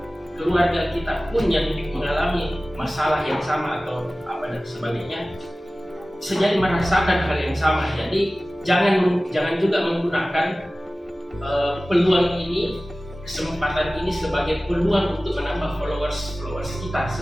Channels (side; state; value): both; normal; correlation 0.97